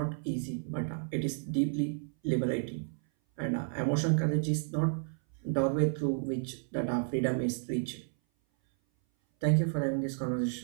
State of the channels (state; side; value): silent; left; 57 dB below the other